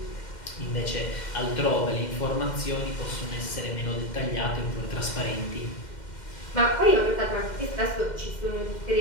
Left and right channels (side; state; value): right; late; 2.1 ms